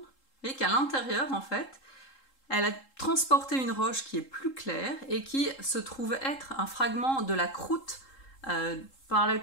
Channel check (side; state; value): right; late; 3.7 ms